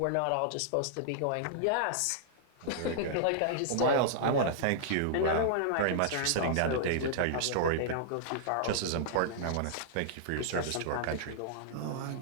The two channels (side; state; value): both; different; correlation -0.02